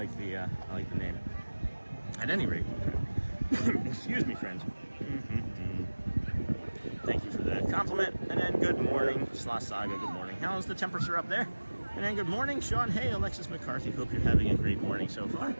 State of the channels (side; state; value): both; inverted; correlation -1.00